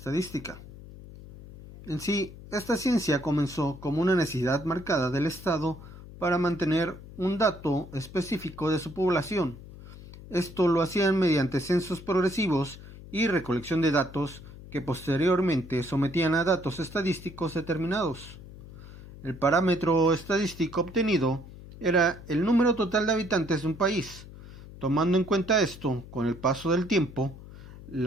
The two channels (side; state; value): left; noise; hum, 16 dB below the sound